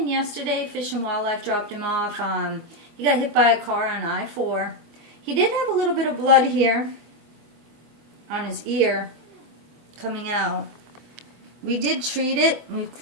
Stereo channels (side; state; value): left; late; 24 ms